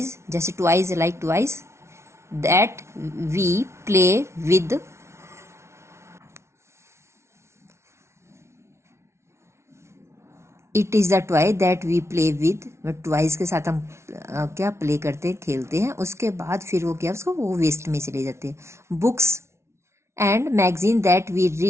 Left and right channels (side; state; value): left; late; 0.13 ms